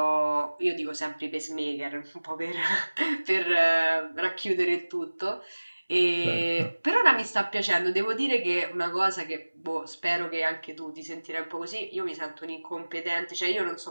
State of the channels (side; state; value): both; inverted; correlation -1.00